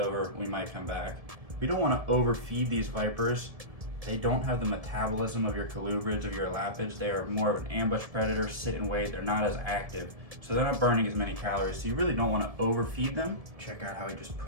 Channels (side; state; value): left; late; 1.7 ms